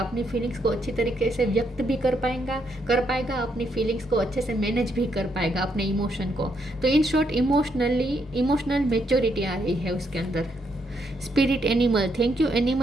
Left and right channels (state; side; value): normal; both; correlation 0.76